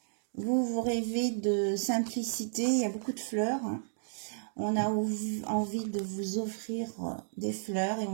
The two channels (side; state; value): left; silent; digital silence